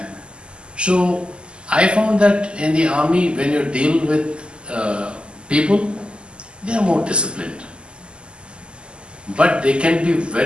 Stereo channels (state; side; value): late; left; 0.051 ms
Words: So I found that in the army, when you deal with people, they are more disciplined. But they can be